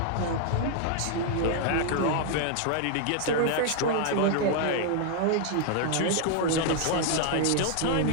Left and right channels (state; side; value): different; both; correlation 0.00